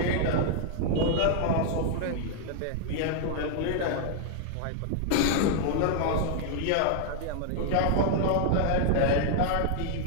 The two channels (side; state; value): both; different; correlation 0.00